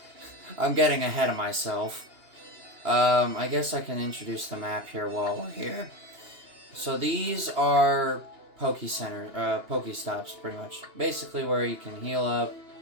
I'm getting ahead of myself. I guess I can introduce the map here while we're here. So these are Pokestops, pretty much. Basically where you can heal up,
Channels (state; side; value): late; left; 2.8 ms